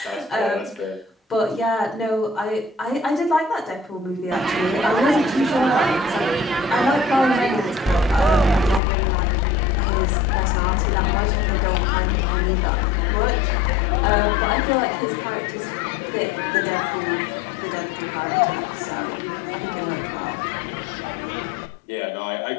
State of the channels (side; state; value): right; drops out; at 8.8 s